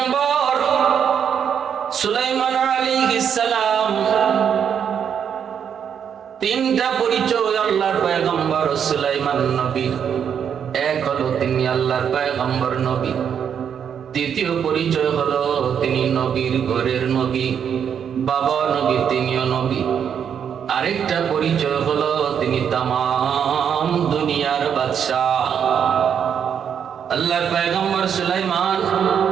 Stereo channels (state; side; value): quieter; left; 8.0 dB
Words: সুলাইমান আলাইহিস সালাম, তিনটা পরিচয় আল্লাহর পয়গম্বর সুলাইমান নবী। এক হলো তিনি আল্লাহর পয়গম্বর নবী। দ্বিতীয় পরিচয় হলো তিনি নবীর ঘরের নবী, বাবা নবী, তিনিও নবী। আরেকটা পরিচয় হলো তিনি তামাম দুনিয়ার বাদশাহ। আল্লাহর পয়গম্বর সুলাইমান